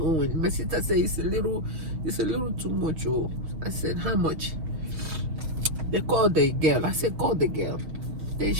My sister said, it's a little too much. Oh. I said, how much? They called the girl. I said, call the girl. Then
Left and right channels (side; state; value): left; late; 6.3 ms